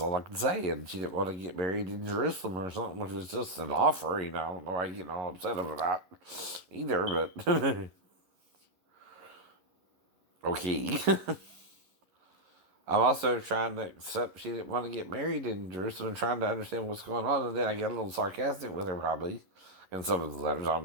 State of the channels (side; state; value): left; late; 11 ms